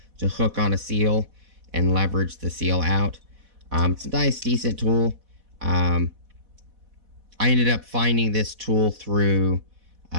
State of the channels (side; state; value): left; late; 4.1 ms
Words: to hook on a seal and leverage the seal out. It's a nice, decent tool. I ended up finding this tool through